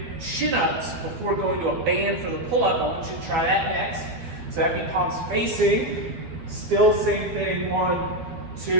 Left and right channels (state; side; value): late; left; 12 ms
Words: chin-ups before going to a band for the pull-up, I want you to try that next. So that'd be palms facing, still same thing, 1,